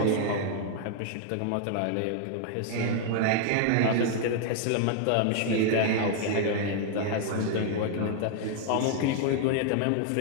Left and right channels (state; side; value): different; both; correlation 0.00